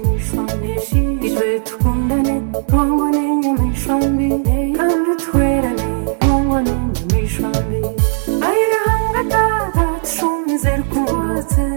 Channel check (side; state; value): left; silent; digital silence